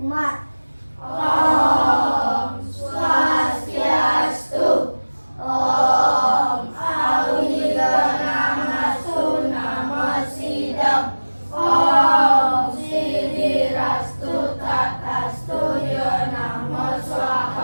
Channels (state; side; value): inverted; both; correlation -1.00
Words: Om Swastiastu. Om Awiganastu Namo Sidam. Om Sidirastu Tatastu Yo Namo